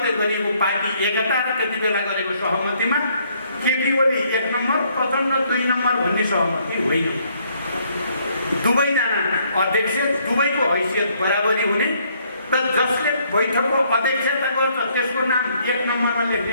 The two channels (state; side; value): inverted; both; correlation -0.68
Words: गरिएको पार्टी एकता र त्यति बेला गरेको सहमतिमा केपी ओली 1 नम्बर, प्रचण्ड 2 नम्बर भन्ने सहमति होइन। दुवैजना अध्यक्ष, दुवैको हैसियत बराबरी हुने र जसले बैठकको अध्यक्षता गर्छ त्यसको नाम 1 नम्बरमा